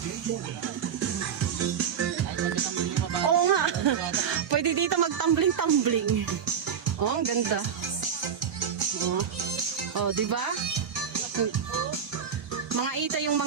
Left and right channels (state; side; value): quieter; left; 7.5 dB